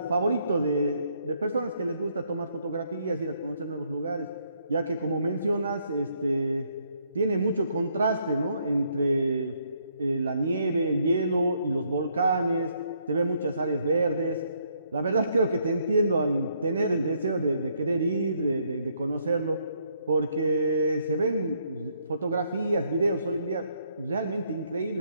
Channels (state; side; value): inverted; both; correlation -0.71